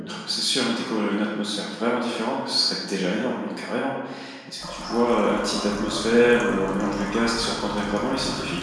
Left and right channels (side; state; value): both; identical; correlation 1.00